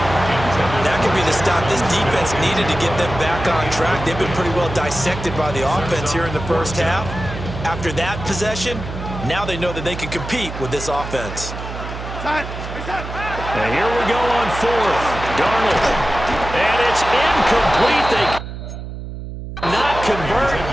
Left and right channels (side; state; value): right; noise; hum, 9 dB below the sound